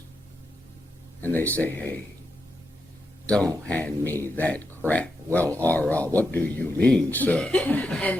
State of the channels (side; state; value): both; normal; correlation 0.85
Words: and they say, hey, don't hand me that crap. Well, what do you mean, sir?